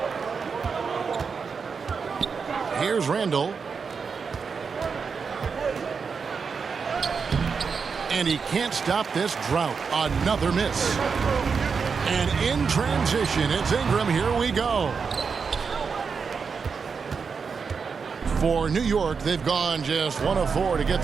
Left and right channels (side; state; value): left; quieter; 5.6 dB